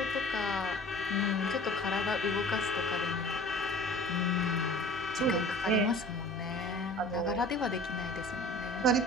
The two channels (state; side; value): normal; both; correlation 0.44